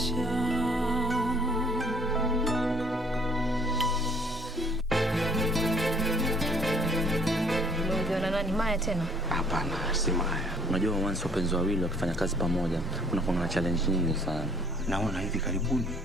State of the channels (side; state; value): both; normal; correlation 0.59